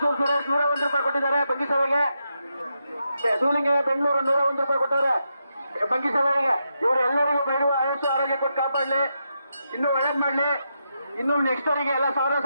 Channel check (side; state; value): both; inverted; correlation -0.84